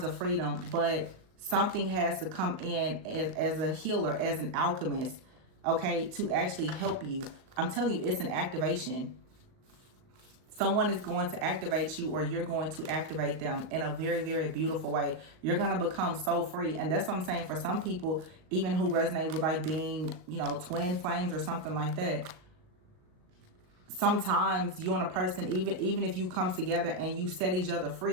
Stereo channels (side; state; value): left; late; 38 ms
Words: of freedom, but something has to come in as a healer, as an alchemist, okay, to actually help you. I'm telling you, it's an activation. Someone is going to activate you or you're going to activate them in a very, very beautiful way. You're going to become so free. And that's what I'm saying for some people, even who resonate with like being, twin flames or something like that. Sometimes you and a person, even if you come together and you set each other